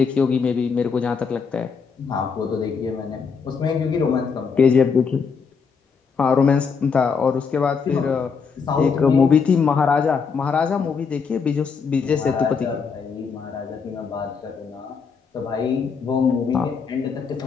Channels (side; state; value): right; quieter; 5.7 dB